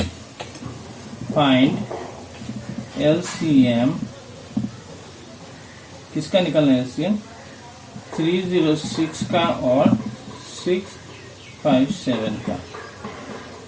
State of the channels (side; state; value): both; identical; correlation 1.00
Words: फाइंड LCM, किसका निकलना है LCM? 306 का और 657 का।